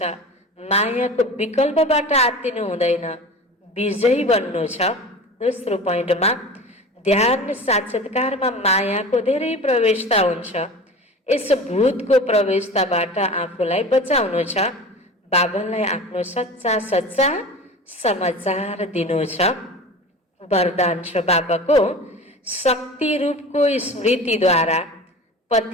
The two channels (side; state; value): both; normal; correlation 0.35